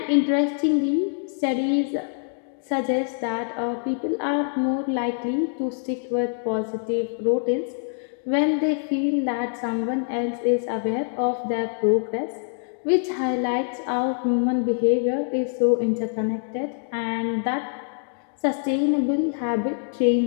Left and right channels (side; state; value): right; silent; 62 dB below the other